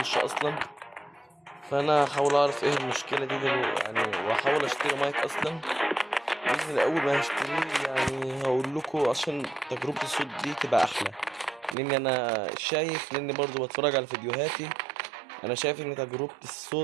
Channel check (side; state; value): left; drops out; at 11.8 s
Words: اصلا. فانا هحاول اعرف ايه المشكلة دي يعني، واحاول اشتري مايك اصلا باذن الله. اول ما هشتريه يعني هقول لكم عشان تجربة الصوت دي تبقى احلى، لاني انا شايف، لاني برضو بتفرج على فيديوهاتي، انا شايف ان تجربة